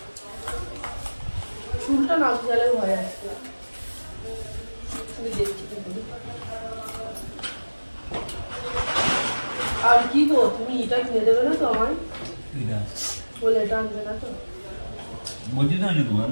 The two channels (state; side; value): inverted; both; correlation -1.00